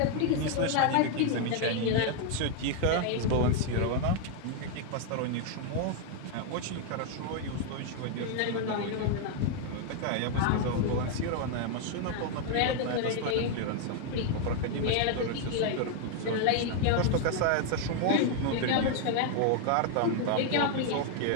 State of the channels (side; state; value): both; different; correlation 0.00